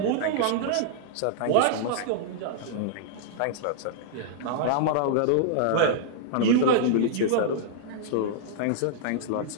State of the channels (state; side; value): different; both; correlation -0.02